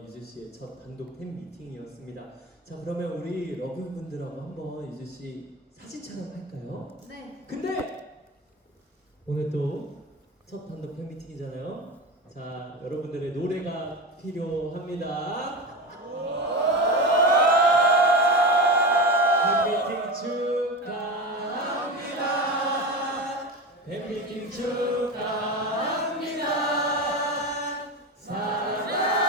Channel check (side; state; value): both; normal; correlation 0.23